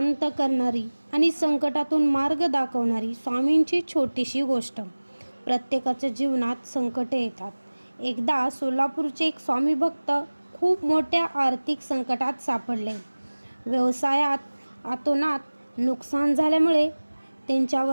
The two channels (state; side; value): inverted; both; correlation -1.00